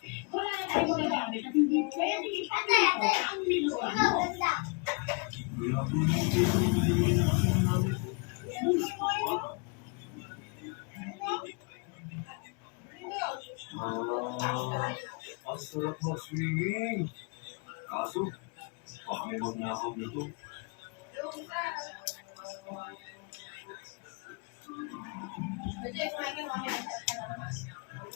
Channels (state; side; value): quieter; right; 34.0 dB